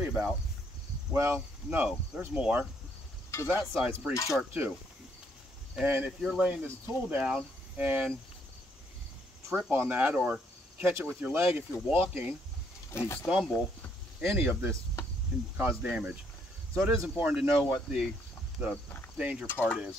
about. Well, no, there's more, because that side's pretty sharp too. And if you're laying this tool down and trip on that or catch it with your leg if you're walking and you stumble, any of this can cause damage. So it is important to know what the danger part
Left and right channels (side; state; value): both; normal; correlation 0.70